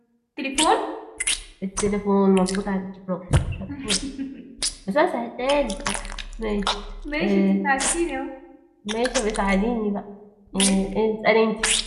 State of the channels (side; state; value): both; identical; correlation 1.00